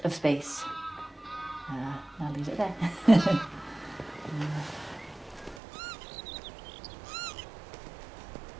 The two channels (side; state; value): left; drops out; at 5.6 s